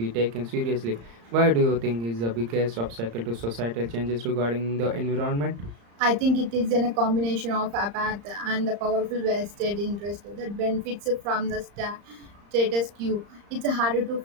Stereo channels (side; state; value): left; late; 35 ms